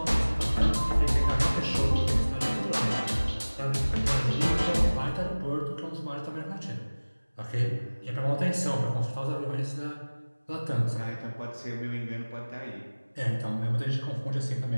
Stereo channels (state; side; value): inverted; both; correlation -1.00